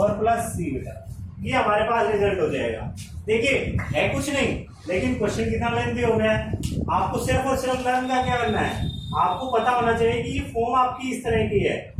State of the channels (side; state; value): both; identical; correlation 1.00